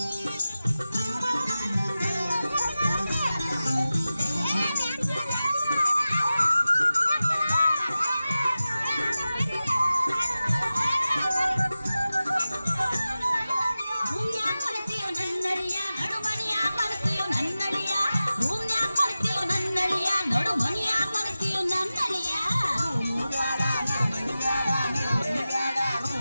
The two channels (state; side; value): inverted; both; correlation -0.95